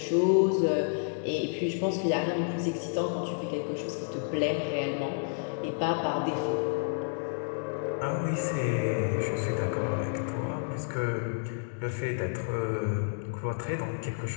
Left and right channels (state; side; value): silent; right; 58 dB below the other